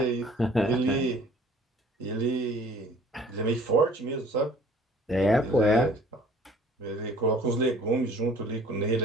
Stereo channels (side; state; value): both; normal; correlation 0.52